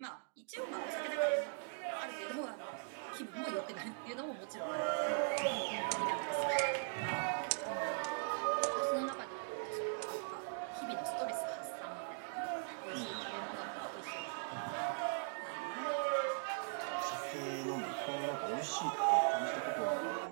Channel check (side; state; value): left; silent; digital silence